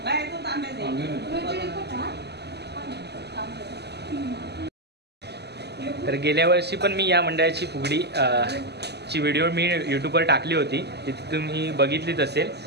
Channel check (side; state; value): left; late; 0.49 ms